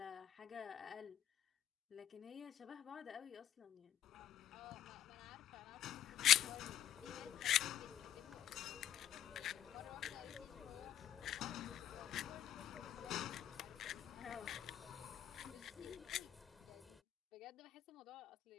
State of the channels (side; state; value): right; quieter; 10.9 dB